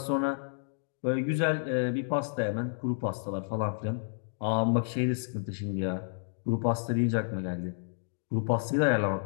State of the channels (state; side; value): silent; right; digital silence